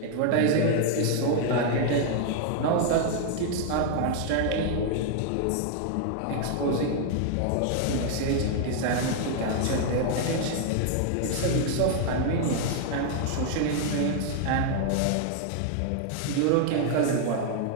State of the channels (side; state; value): both; different; correlation 0.00